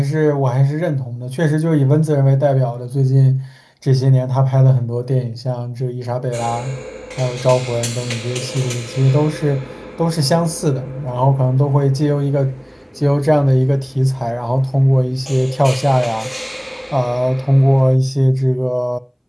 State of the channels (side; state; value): both; identical; correlation 1.00